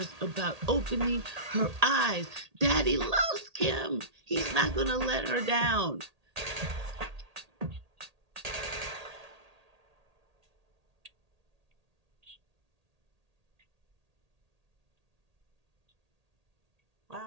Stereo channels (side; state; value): left; late; 1.8 ms